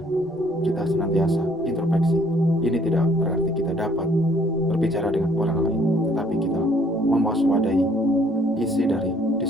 kita senantiasa introspeksi. Ini tidak berarti kita dapat berbicara dengan orang lain, tetapi kita mewaspadai isi dari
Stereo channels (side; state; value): both; normal; correlation 0.62